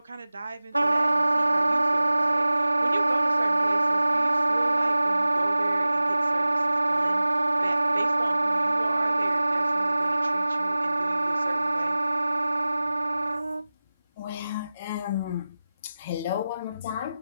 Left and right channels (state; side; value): inverted; both; correlation -0.97